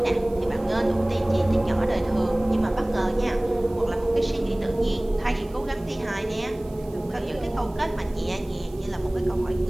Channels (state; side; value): noise; right; hiss, 27 dB below the sound